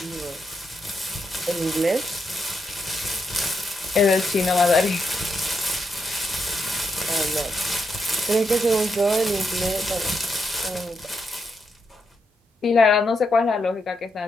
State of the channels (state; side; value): normal; both; correlation 0.82